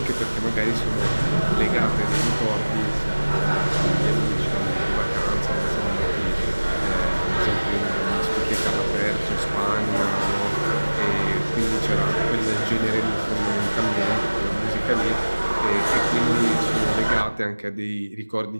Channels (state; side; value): inverted; both; correlation -1.00